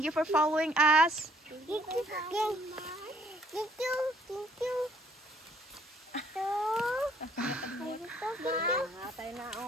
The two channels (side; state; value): both; normal; correlation 0.63